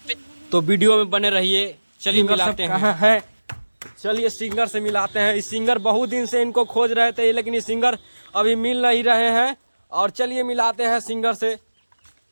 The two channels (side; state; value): both; inverted; correlation -1.00